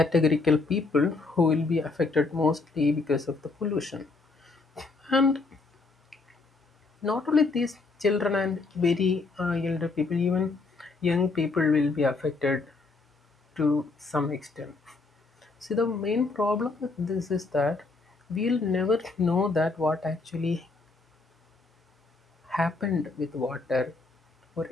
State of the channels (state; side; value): quieter; right; 3.8 dB